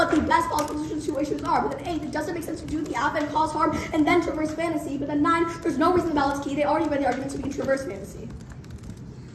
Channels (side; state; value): both; identical; correlation 1.00